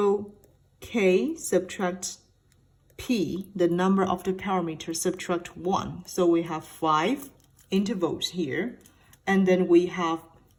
k subtract p, the number of the parameters, subtract 1. So we have 5 intervals here. And then we have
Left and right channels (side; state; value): both; identical; correlation 1.00